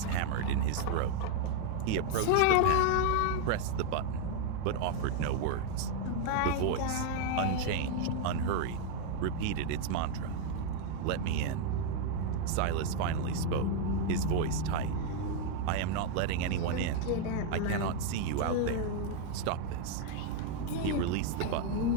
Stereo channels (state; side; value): different; both; correlation 0.01